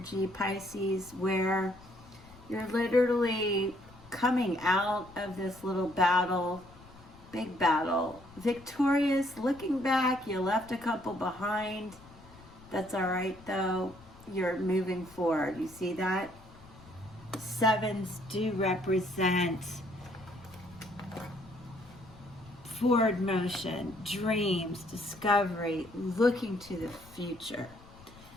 Pisces, where you're literally coming out of this little battle, big battle, victorious, looking back. You left a couple behind. That's all right, though. You're moving forward. You see that? Sevens do represent forward motion, dreams, discovery, looking to the future.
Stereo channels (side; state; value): left; noise; rumble, 22 dB below the sound